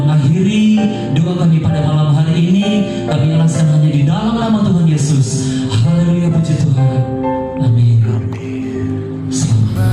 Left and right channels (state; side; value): identical; both; correlation 1.00